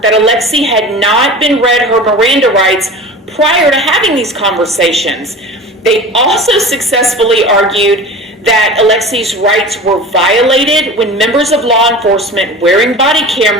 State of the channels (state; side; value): normal; both; correlation 0.36